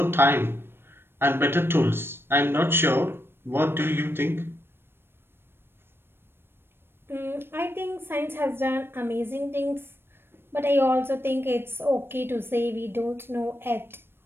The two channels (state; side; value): late; left; 0.11 ms